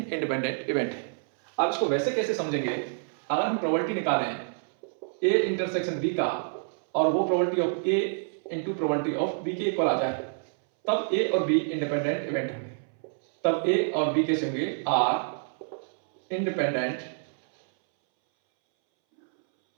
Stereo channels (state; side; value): silent; left; 60 dB below the other